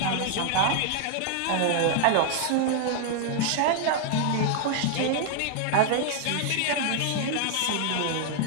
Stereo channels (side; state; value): both; different; correlation 0.00